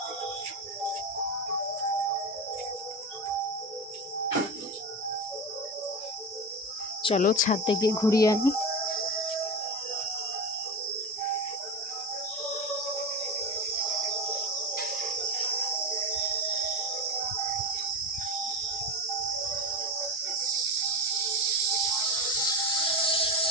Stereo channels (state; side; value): normal; both; correlation 0.22